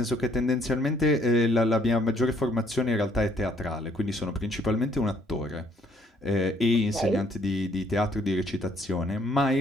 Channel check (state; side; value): normal; both; correlation 0.65